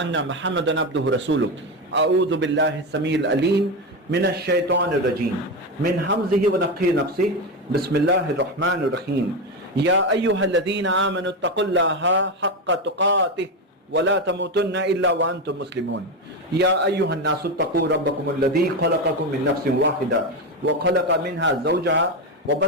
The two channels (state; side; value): normal; both; correlation 0.13